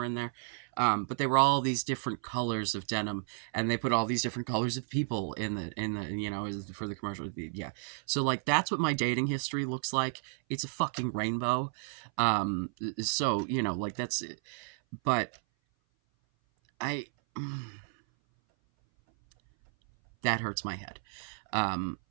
in there. But they were all these different colors of denim, and they put all these different colors of people in the you know, for the commercial. Yeah, so, like, that's what my dating history looks like. It's a fucking rainbow. So, you know, like, that's it. But I that hurts my head. Um,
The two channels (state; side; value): silent; left; 56 dB below the other